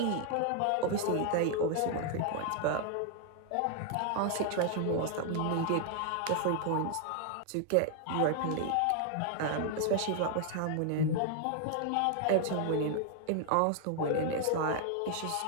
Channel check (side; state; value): both; different; correlation 0.00